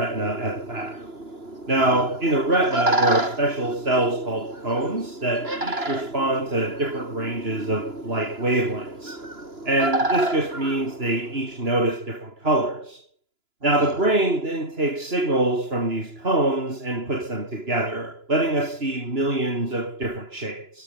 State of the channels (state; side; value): late; left; 2.9 ms